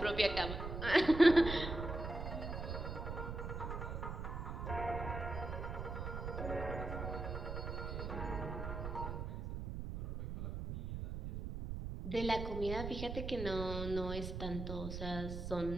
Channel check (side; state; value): right; noise; rumble, 5 dB below the sound